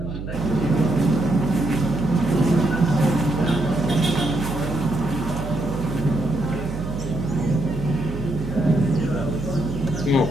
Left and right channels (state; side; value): noise; right; hum, 8 dB below the sound